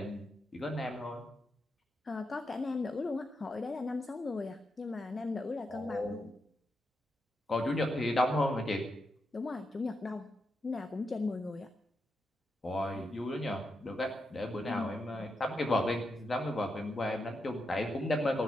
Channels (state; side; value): normal; both; correlation 0.85